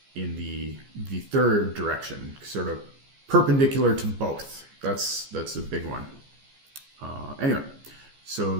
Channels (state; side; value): late; left; 14 ms